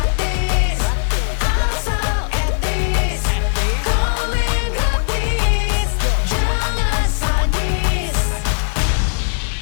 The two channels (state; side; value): silent; right; digital silence